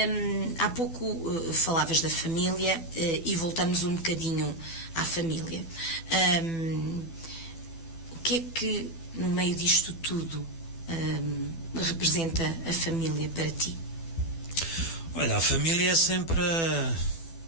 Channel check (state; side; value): late; right; 12 ms